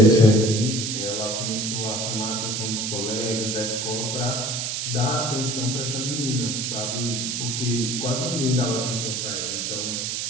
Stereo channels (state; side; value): noise; right; hiss, 2 dB below the sound